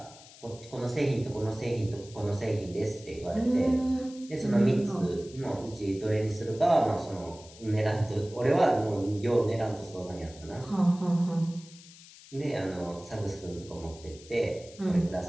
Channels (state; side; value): noise; left; hiss, 20 dB below the sound